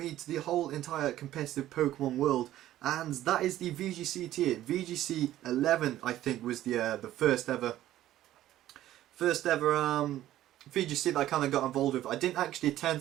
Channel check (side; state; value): left; quieter; 13.6 dB